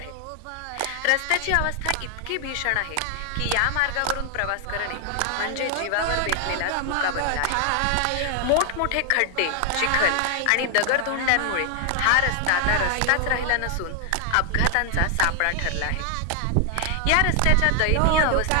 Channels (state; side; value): different; both; correlation 0.00